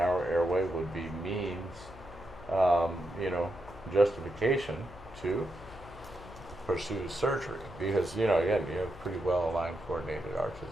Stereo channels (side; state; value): left; noise; hum, 18 dB below the sound